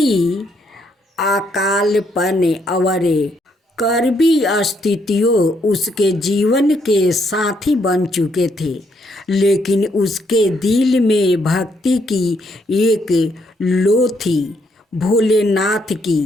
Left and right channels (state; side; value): normal; both; correlation 0.73